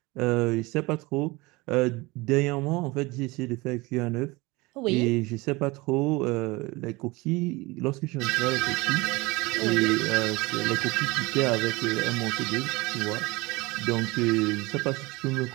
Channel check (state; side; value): quieter; left; 23.2 dB